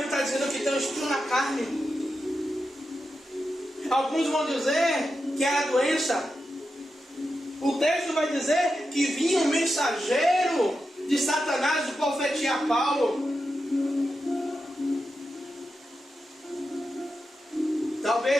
está dizendo que tem um espinho na carne. Alguns vão dizer que é a doença. O texto vai dizer que vinha um mensageiro de Satanás de profetizar Paulo.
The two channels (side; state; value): both; normal; correlation 0.89